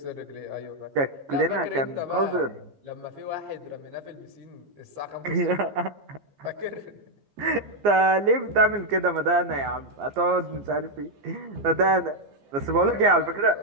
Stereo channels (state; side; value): late; left; 15 ms